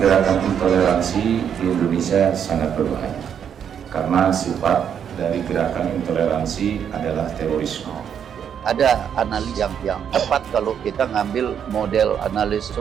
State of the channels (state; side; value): quieter; left; 8.3 dB